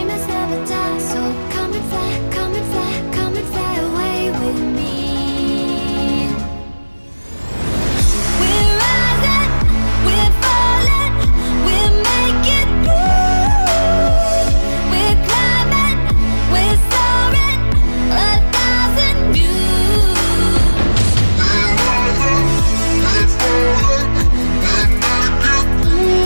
never die, so come and fly, come and fly, come and fly away with me. We're rising, we're falling, we're making through. We're climbing, we're soaring, 1,000 views. We're rising, we're falling, we're making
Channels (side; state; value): both; inverted; correlation -1.00